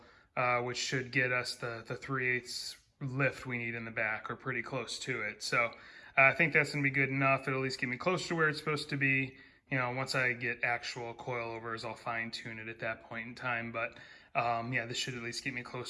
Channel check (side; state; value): both; identical; correlation 1.00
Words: which should get us the 3/8 lift we need in the back, or pretty close to it. So I think that's going to be good enough. It'll at least get me close to where it's supposed to be. Once I get actual coilovers, I'll fine tune it at that point in time. But yeah, this should at least get me